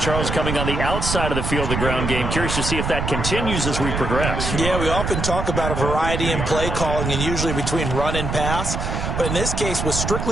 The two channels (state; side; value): noise; right; rumble, 2 dB below the sound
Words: coming on the outside of the field of the ground game. Curious to see if that continues as we progress. Yeah, we often talk about a variety in play calling and usually between run and pass. But in this case, with